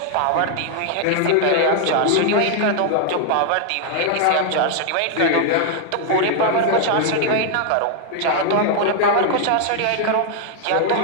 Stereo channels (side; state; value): both; different; correlation 0.00